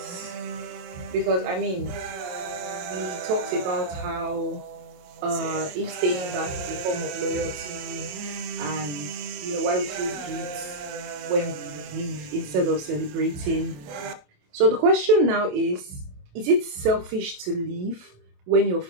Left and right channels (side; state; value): left; late; 27 ms